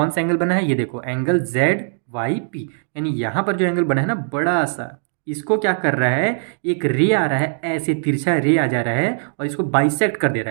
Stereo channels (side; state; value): left; silent; digital silence